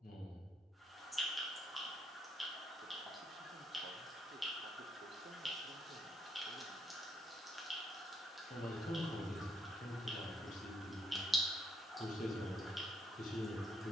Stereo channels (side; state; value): both; normal; correlation 0.72